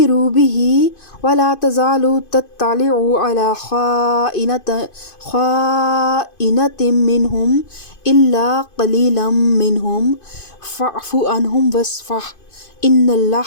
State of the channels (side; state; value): right; late; 2.5 ms